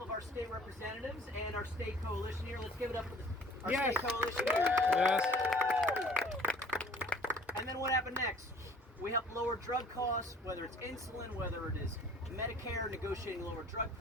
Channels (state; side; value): normal; both; correlation 0.52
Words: of our state representatives and our state coalition here. Let's give it up for our state coalition here. Yes. And then what happened next? We helped lower drug costs, whether it's insulin, whether it is Medicare, negotiating lower drug